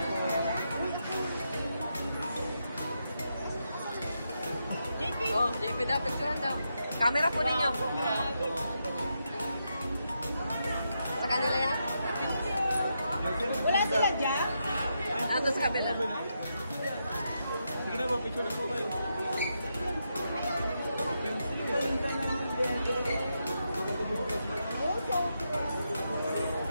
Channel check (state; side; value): inverted; both; correlation -0.83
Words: Sige daw, picture daw. Camera po ninyo. Sa kanila yan? Wala sila dyan? Ando sa kabila. Sige na po, picture na po kayo.